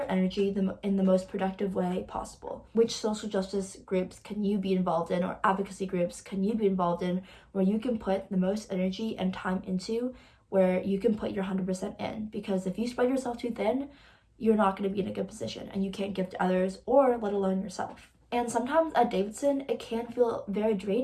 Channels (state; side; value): identical; both; correlation 1.00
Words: energy in the most productive way possible. Which social justice groups can you be involved in, or advocacy groups can you be involved in, where you can put the most energy and time into, where you can put your 100% in? Because if you spread yourself too thin, you're not going to be in a good position, and you can't give to others, or let alone yourself. And sometimes at Davidson, it can feel very